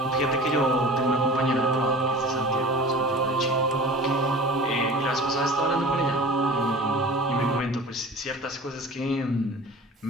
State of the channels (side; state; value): both; normal; correlation 0.40